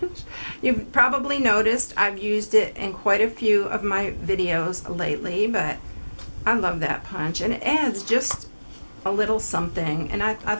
You've probably noticed I've used it in quite a few of my videos lately, but I love that punch, and it adds just a little something, and I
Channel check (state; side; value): inverted; both; correlation -1.00